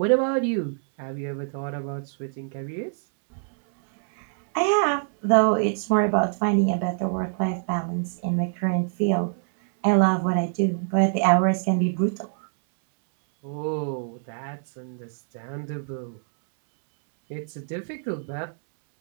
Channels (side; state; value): left; silent; 62 dB below the other